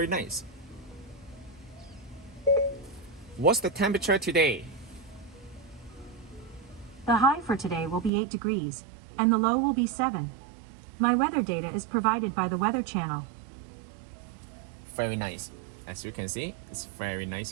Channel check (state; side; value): drops out; left; at 8.1 s